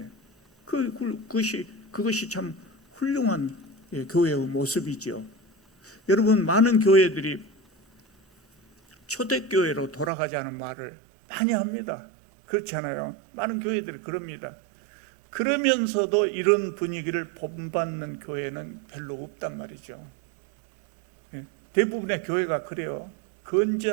그것이 참 훌륭한 교회의 모습이죠. 여러분, 많은 교회들이 초대교회로 돌아가자는 말을 많이 합니다. 그렇지 않아요? 많은 교회들이 그럽니다. 그러면서도 이런 분위기를 본받는 교회는 별로 없단 말이죠. 대부분의 교회가 그래요.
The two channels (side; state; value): left; drops out; at 10.1 s